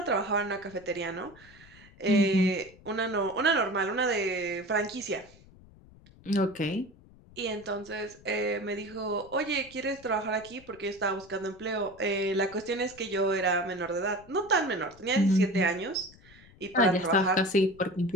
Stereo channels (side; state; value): left; noise; rumble, 24 dB below the sound